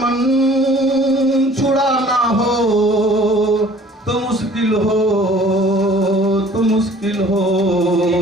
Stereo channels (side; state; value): both; normal; correlation 0.52